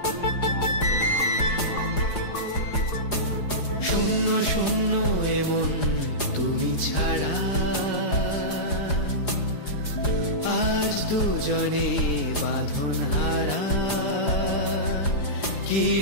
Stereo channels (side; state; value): right; late; 4.9 ms